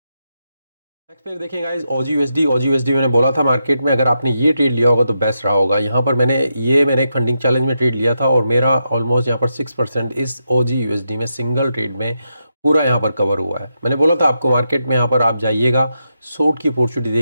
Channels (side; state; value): both; inverted; correlation -0.85